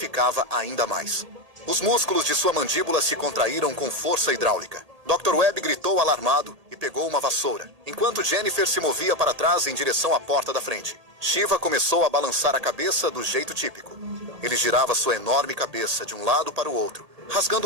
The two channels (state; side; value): late; left; 1.8 ms